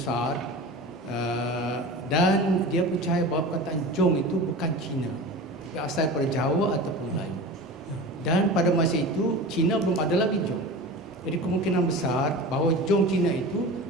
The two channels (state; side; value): normal; both; correlation 0.32